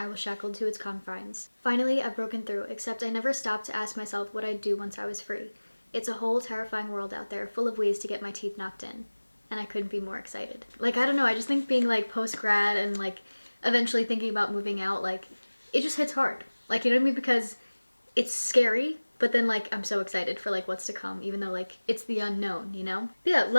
was shackled to its confines. Finally, I've broken through, except I never stopped to ask myself what I'd do once I was free. It's a whole terrifying world out there, full of ways to get my teeth knocked in. And I couldn't be more excited." Like, I don't know, I just think being like post-grad and like eventually thinking about moving out, like it just hits hard. Like, you know what I mean? Because it's scary, but then like I'm so excited for like what's to come, even though like it's the unknown, you know? But yeah,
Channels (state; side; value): inverted; both; correlation -1.00